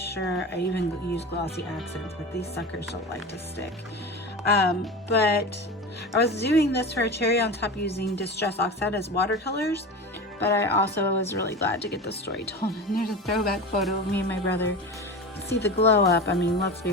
sure I even use glossy accents, but these suckers don't like to stick. But I was doing this for a cherry on top using Distress Oxide as watercolors. But I also was really glad to get the story told. And there's a throwback photo of me and my brother. See the glow up. I mean, let's be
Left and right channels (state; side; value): normal; both; correlation 0.28